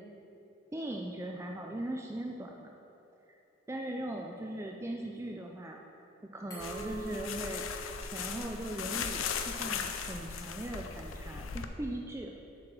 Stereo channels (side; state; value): both; normal; correlation 0.53